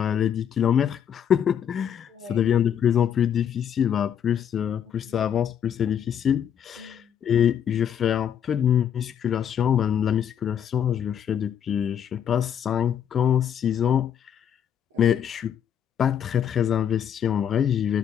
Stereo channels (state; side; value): quieter; right; 9.0 dB